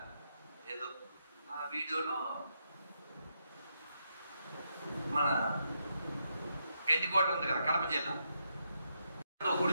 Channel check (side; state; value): both; inverted; correlation -0.80